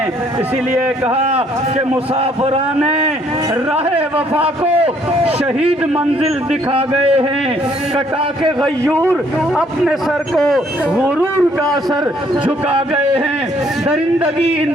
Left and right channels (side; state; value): both; normal; correlation 0.65